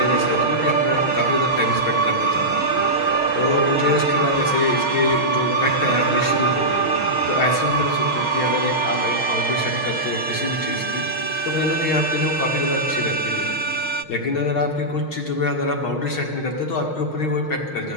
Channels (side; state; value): right; late; 6.4 ms